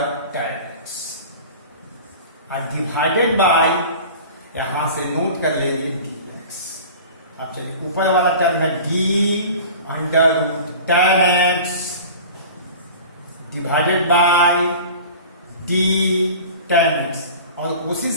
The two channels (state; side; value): inverted; both; correlation -0.39